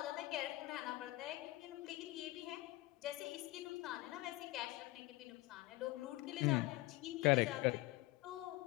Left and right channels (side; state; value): right; quieter; 19.5 dB